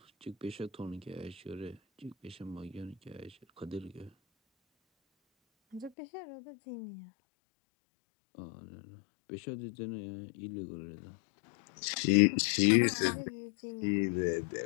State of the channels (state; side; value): drops out; right; at 5.9 s